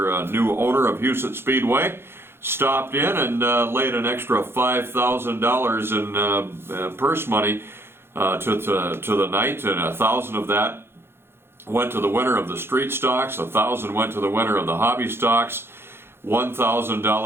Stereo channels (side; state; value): left; late; 0.11 ms